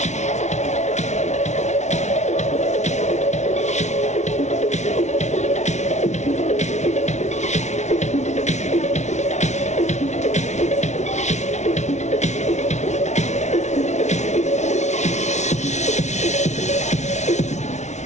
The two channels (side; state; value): right; late; 0.33 ms